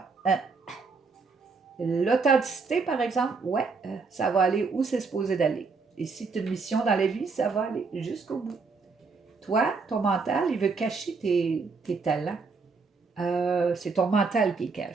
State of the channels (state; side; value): quieter; left; 4.6 dB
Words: Hein? L'authenticité, par exemple, ouais, ça va aller où c'est supposé d'aller. Et si tu as une mission dans la vie, ça va aller jusqu'au bout. Toi, ton mental, il veut cacher tes talents. C'est ton mental qui les